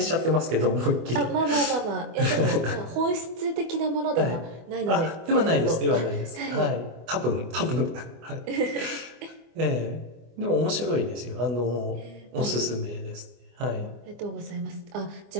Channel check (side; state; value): left; late; 24 ms